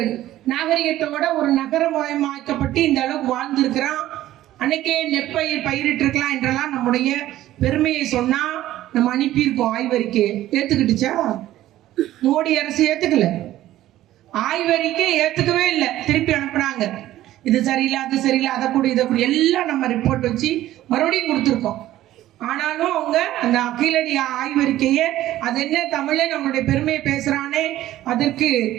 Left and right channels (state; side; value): quieter; left; 14.3 dB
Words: நாகரிகத்தோட ஒரு நகரமயமாக்கப்பட்டு இந்த அளவுக்கு வாழ்ந்திருக்கிறான், அன்னைக்கே நெற்பயிர் பயிரிட்டு இருக்கலாம் என்றெல்லாம் நம்முடைய பெருமையை சொன்னா நம்ம அனுப்பியிருக்கோம். ஆய்வறிக்கை ஏத்துக்கிட்டுச்சா? மோடி அரசு ஏத்துக்கல. ஆய்வறிக்கை ஏத்துக்கவே இல்லை, திருப்பி அனுப்புனாங்க. இது சரியில்லை, அது சரியில்லை, அதை கூட இதை கூட எல்லாம் நம்ம ரிப்போர்ட் வச்சு மறுபடியும் கொடுத்துருக்கோம். ஆனாலும் அவங்க அந்த கீழடி ஆய்வறிக்கையை அது என்ன தமிழே நம்மளுடைய பெருமையை பேசுறானே, அதற்கு